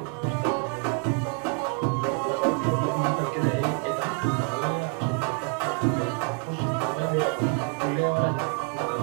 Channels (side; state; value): left; quieter; 36.8 dB